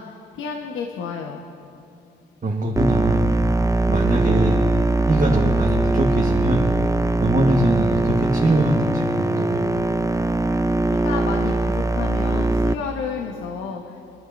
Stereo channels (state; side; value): normal; both; correlation 0.85